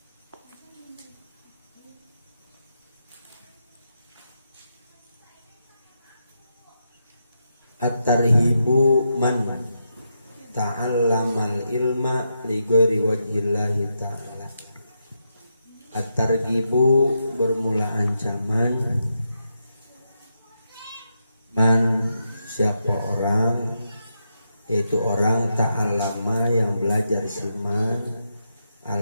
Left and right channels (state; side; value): inverted; both; correlation -0.84